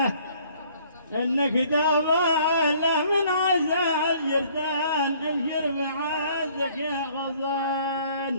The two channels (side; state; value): both; inverted; correlation -0.59